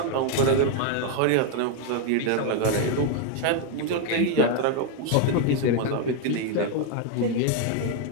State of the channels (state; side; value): different; both; correlation 0.00